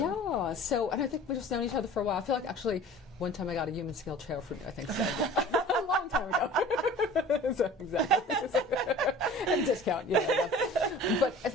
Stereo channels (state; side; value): normal; both; correlation 0.43